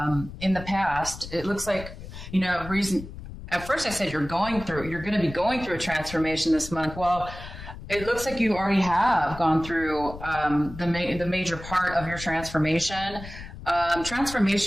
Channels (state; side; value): noise; left; rumble, 13 dB below the sound